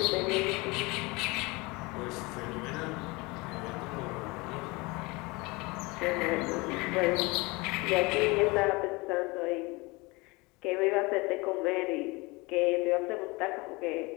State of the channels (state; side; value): quieter; right; 24.9 dB